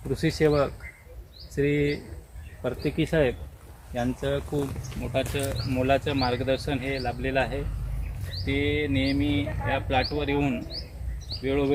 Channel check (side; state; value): both; identical; correlation 1.00